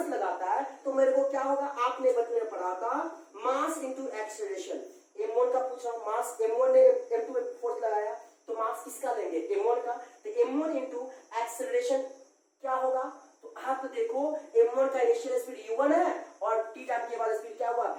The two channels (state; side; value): identical; both; correlation 1.00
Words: लगाता है तो मेरे को क्या होगा, आपने बचपन में पढ़ा था मास इंटू एक्सेलरेशन। M1 का पूछ रहा हूं, मास M1 ने M2 पे फोर्स लगाया तो मास किसका लेंगे, M1 का, तो M1 इंटू एक्सेलरेशन क्या होगा, तो आप तो देखो M1 का इनिशियल स्पीड u1 है और t टाइम के बाद स्पीड क्या हुआ,